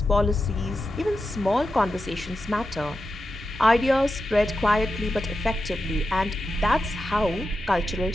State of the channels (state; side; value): normal; both; correlation 0.90